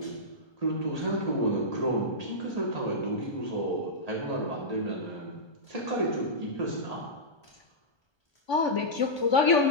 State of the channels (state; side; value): late; right; 1.2 ms